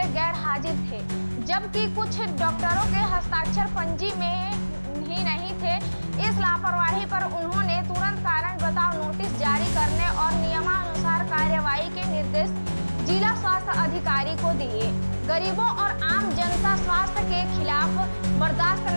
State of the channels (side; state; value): both; inverted; correlation -1.00